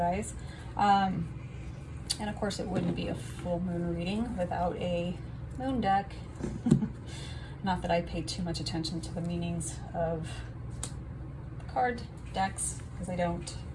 And of course, it wouldn't be a full moon reading without a moon deck. Not that I pay too much attention to the meanings of card decks, because I don't.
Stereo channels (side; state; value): both; identical; correlation 1.00